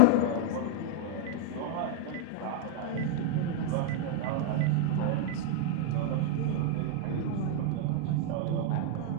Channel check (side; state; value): both; different; correlation 0.00